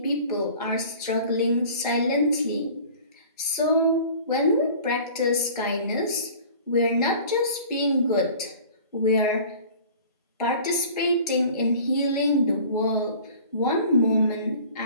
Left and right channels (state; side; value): inverted; both; correlation -0.45